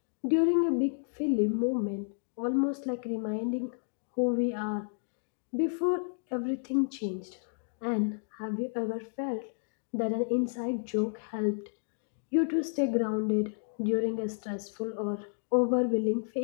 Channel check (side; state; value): right; silent; digital silence